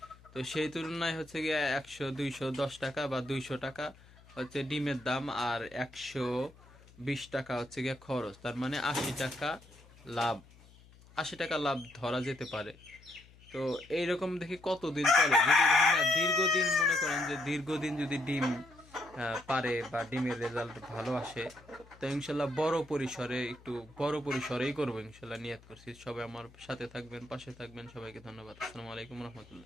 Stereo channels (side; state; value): left; noise; hum, 24 dB below the sound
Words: তো সেই তুলনায় হচ্ছে গিয়া 100-210 টাকা বা 200 টাকা হচ্ছে ডিমের দাম, আর 120 টাকা হচ্ছে গিয়া খরচ। তার মানে 80 টাকা লাভ। 80 টাকা লাভ ধরা যেতে পারে। তো এইরকম দেখি কতদিন চলে। যদি দেখি না দীর্ঘদিন, মনে করেন যে দীর্ঘদিন যদি ডিম পারে বা ডিমের রেজাল্ট ভালো আসে, তো ইনশাল্লাহ বড় পরিসরেই করবো ইনশাল্লাহ, নিয়ত করছি। সবাই আমার সাথে থাকবেন, পাশে থাকবেন। সবাইকে ধন্যবাদ। আসসালামু আলাইকুম